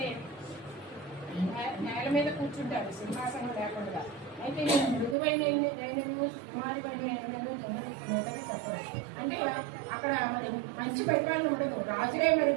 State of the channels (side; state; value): left; drops out; at 5.2 s